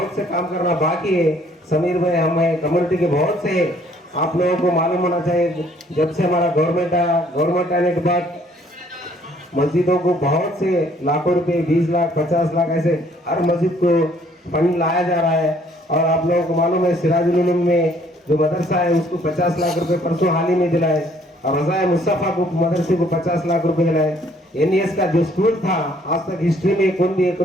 करना बाकी है। समीर भाई हमें कम्युनिटी के बहुत से आप लोगों को मालूम होना चाहिए, जब से हमारा गवर्नमेंट आने के बाद मस्जिदों को बहुत से लाखों रुपए 20 लाख 50 लाख ऐसे हर मस्जिद को फंड लाया जा रहा है। और आप लोगों को मालूम है सिराजुल उलूम में जो मदरसा है उसको 50 लाख रुपए परसों हाल ही में दिलाए, और रज़ाए मुस्तफ़ा को मदरसे को 50 लाख रुपए दिलाए। NES का जो स्कूल था आज तक हिस्ट्री में कौन भी 1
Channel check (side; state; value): both; normal; correlation 0.62